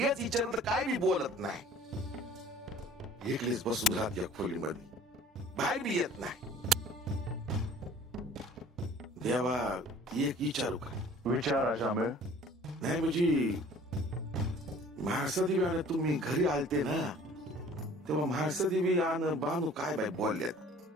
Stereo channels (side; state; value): both; normal; correlation 0.50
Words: विचारलं काय बी बोलत नाही. एकलीच बसून राहते या खोलीमध्ये, बाहेर बी येत नाही. देवा, एक विचारू का? विचार अशामेळ. नाही म्हणजे महासदेवी तुम्ही घरी आलते ना, तेव्हा महासदेवी आणि बानू काय बाय बोलल्यात,